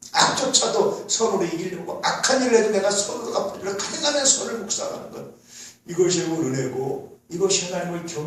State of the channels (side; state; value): both; identical; correlation 1.00